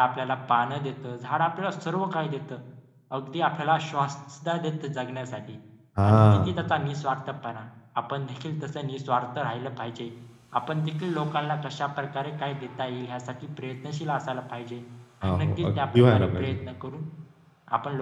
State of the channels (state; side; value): identical; both; correlation 1.00